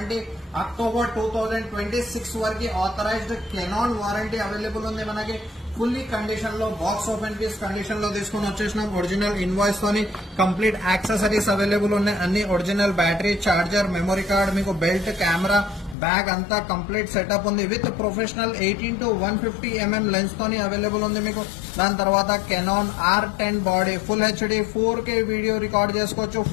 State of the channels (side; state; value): right; drops out; at 16.0 s